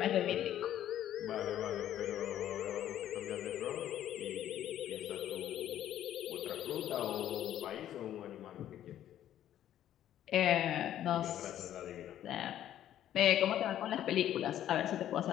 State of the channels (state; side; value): quieter; right; 11.6 dB